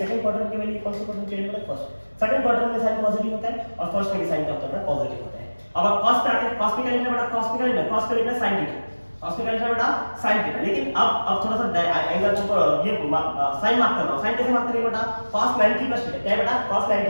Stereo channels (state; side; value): inverted; both; correlation -1.00